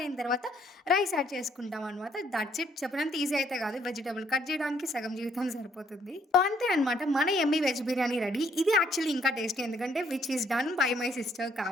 అయిన తర్వాత రైస్ యాడ్ చేసుకుంటాం అనమాట. That's it. చెప్పినంత ఈజీ అయితే కాదు. వెజిటబుల్ కట్ చేయడానికి సగం జీవితం సరిపోతుంది. సో, అంతే అనమాట. మన యమ్మీ వెజ్ బిర్యానీ రెడీ. ఇది యాక్చువల్లీ ఇంకా టేస్టీ ఎందుకంటే which is done by my sister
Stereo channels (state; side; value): normal; both; correlation 0.67